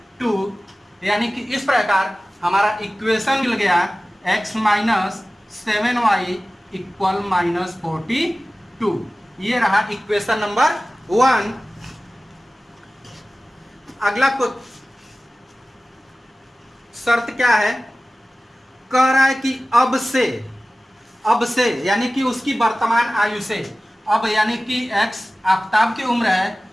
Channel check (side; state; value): both; normal; correlation 0.97